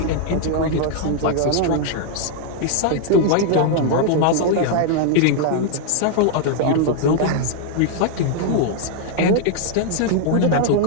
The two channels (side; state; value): both; different; correlation 0.00